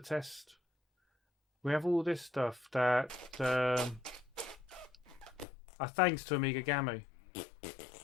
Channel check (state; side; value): drops out; right; at 5.5 s